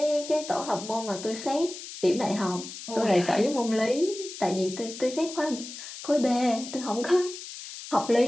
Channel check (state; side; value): noise; left; hiss, 11 dB below the sound